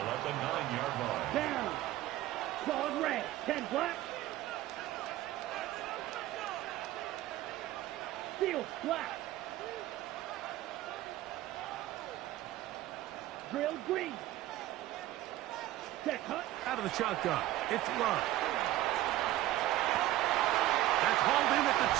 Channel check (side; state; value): left; quieter; 15.1 dB